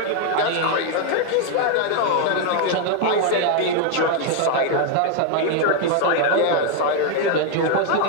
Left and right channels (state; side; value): different; both; correlation 0.01